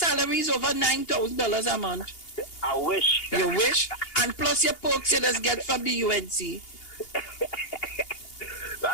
is over $9,000 a month. I wish. You wish? And plus your perks you just get from the UNC.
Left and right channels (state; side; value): late; right; 2.8 ms